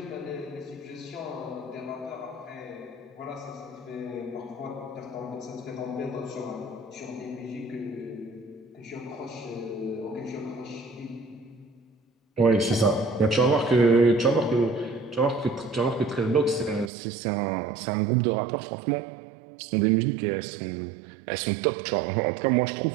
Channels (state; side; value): drops out; left; at 16.9 s